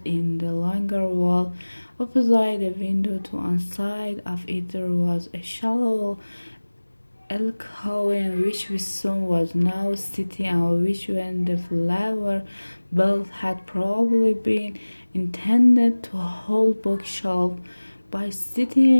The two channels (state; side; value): inverted; both; correlation -1.00